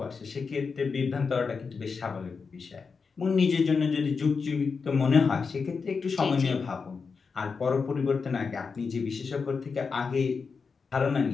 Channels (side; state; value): right; quieter; 5.1 dB